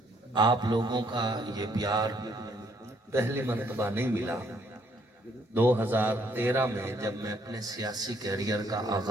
آپ لوگوں کا یہ پیار پہلی مرتبہ نہیں ملا۔ 2013 میں جب میں اپنے سیاسی کیریئر کا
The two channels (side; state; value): both; normal; correlation 0.68